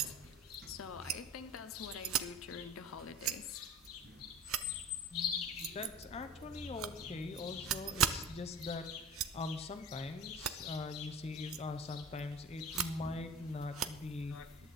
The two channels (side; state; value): both; normal; correlation 0.39